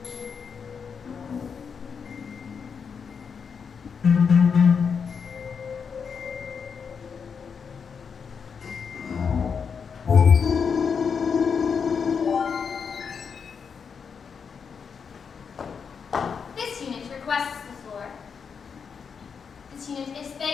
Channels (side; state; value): right; quieter; 6.2 dB